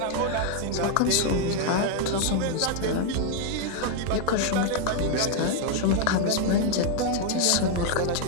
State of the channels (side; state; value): both; different; correlation 0.00